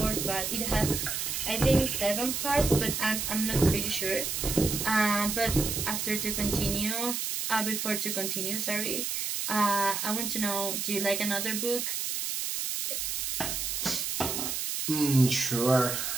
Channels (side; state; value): right; noise; hiss, 2 dB below the sound